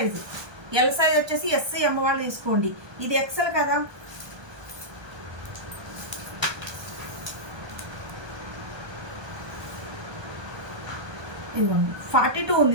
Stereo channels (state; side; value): late; left; 1.2 ms